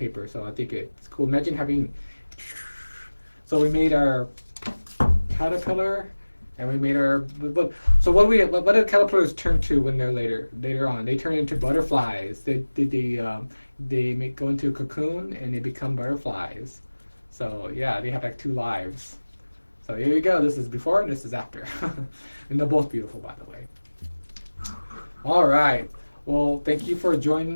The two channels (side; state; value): both; inverted; correlation -1.00